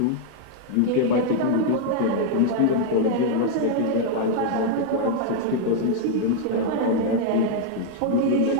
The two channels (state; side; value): different; both; correlation 0.00